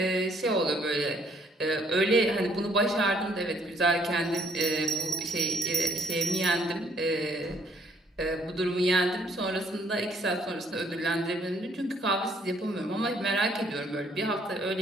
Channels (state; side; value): normal; both; correlation 0.65